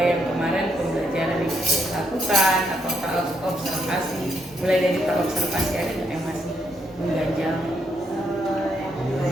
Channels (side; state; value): both; normal; correlation 0.76